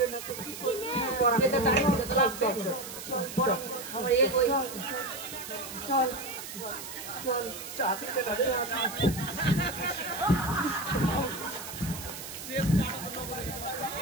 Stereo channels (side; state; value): right; noise; hiss, 10 dB below the sound